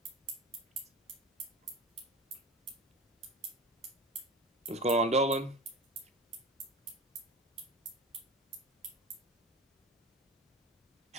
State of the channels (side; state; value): both; normal; correlation 0.31